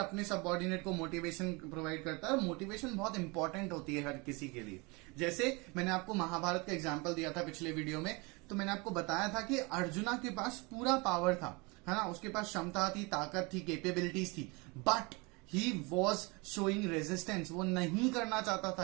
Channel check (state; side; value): quieter; left; 27.5 dB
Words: सबऑर्डिनेट को मोटिवेशन प्रोवाइड करता है, और मोटिवेशन बहुत इंपॉर्टेंट होती है हर किसी के लिए। जैसे मैंने आपको महाभारत का एग्जाम्पल दिया था पिछले वीडियो में, तो मैंने आपको बताया था कि अर्जुना के पास पूरा पावर था, है ना, उसके पास क्षमता थी, ताकत थी, कैपेबिलिटीज थी, but he was showing resistance. वो नहीं करना चाहता